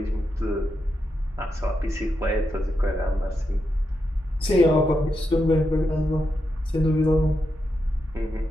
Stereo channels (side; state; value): both; normal; correlation 0.85